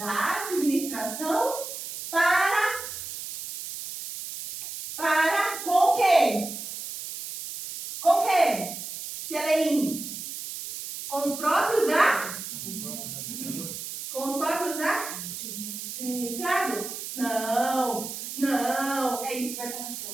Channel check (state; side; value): noise; right; hiss, 8 dB below the sound